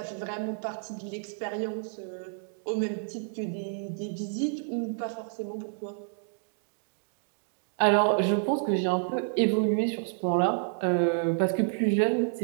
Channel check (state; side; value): silent; left; digital silence